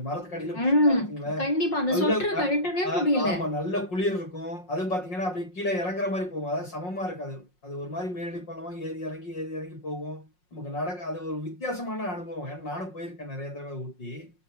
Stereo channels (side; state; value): right; late; 5.5 ms